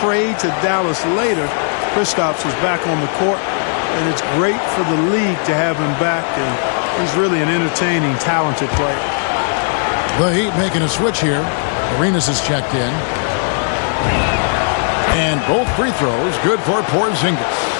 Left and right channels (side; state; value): right; silent; 61 dB below the other